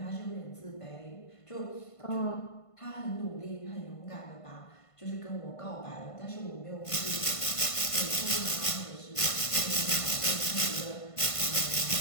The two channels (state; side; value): late; right; 1.5 ms